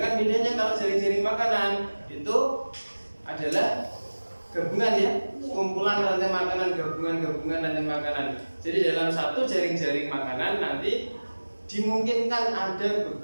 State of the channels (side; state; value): both; inverted; correlation -1.00